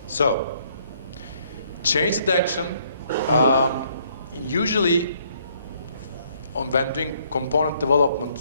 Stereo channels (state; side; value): inverted; both; correlation -0.67